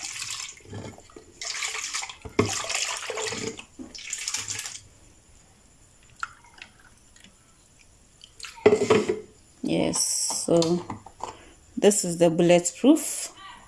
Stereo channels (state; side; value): identical; both; correlation 1.00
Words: Yes, so this is the bulletproof